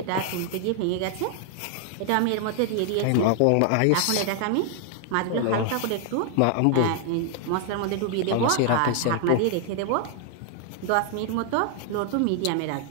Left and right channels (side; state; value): both; different; correlation 0.00